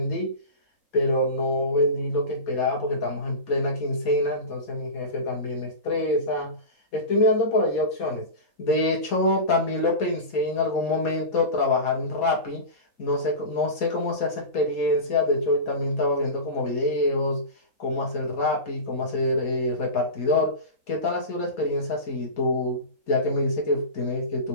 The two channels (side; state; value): right; late; 4.2 ms